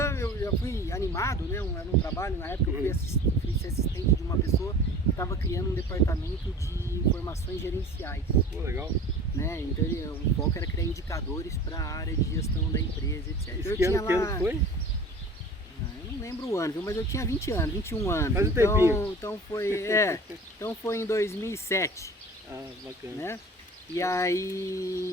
eu já fui animado, né? Era um trabalho, na época eu fui assistente de uma pessoa que estava criando um departamento de informações gerenciais. Pô, legal. Né? Então o foco era criar indicadores para a área de gestão da empresa, etc. Esse que ano foi? Eu não lembro o ano, viu? Mas eu tinha 20 anos, 21 anos. Faz um tempinho. Então foi em 2007. Ah, bacana. Né? E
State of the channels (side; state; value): both; normal; correlation 0.41